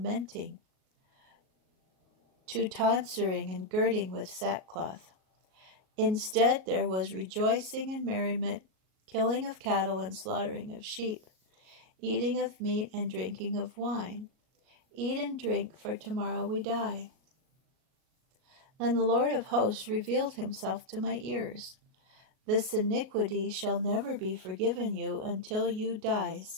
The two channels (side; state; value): left; late; 38 ms